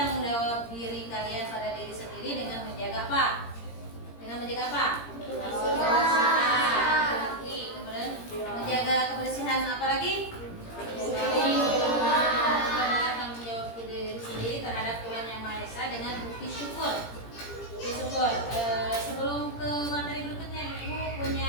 jawab diri kalian pada diri sendiri dengan menjaga apa? Dengan menjaga apa? Kebersihan. Kemudian menjaga kebersihan apa lagi? Tanggung jawab diri sendiri terhadap Tuhan Yang Maha Esa dengan bukti syukur. Sebelum ke materi berikutnya, Ibu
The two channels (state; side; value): late; right; 17 ms